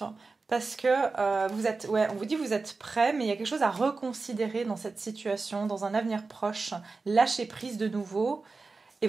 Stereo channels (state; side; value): quieter; left; 4.0 dB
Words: Parce que vous êtes, ouais, on vous dit vous êtes prêt, mais il y a quelque chose à reconsidérer dans cette situation, dans un avenir proche. Lâchez prise de nouveau et